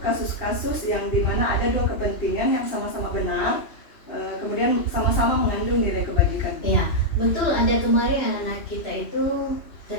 kasus-kasus yang dimana ada dua kepentingan yang sama-sama benar, kemudian sama-sama mengandung nilai kebajikan? Iya, betul, ada kemarin anak-anak kita itu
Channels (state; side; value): late; right; 2.8 ms